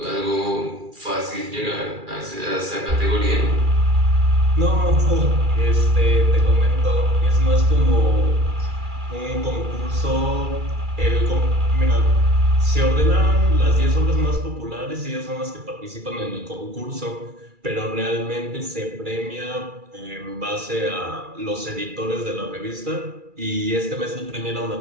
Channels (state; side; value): late; left; 2.4 ms